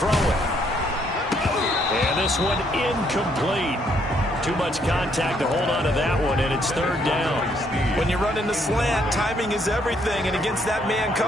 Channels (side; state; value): both; normal; correlation 0.70